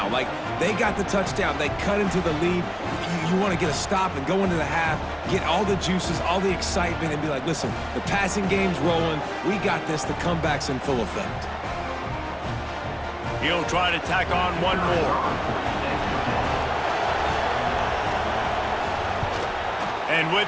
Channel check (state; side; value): identical; both; correlation 1.00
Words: Like, they got the touchdown. They cut into the lead. You want to get a stop and go into the half, get all the juices, all the excitement, and be like, listen, the passing game's rolling. We got this. The comeback's in full effect. He'll try to tack on one more. And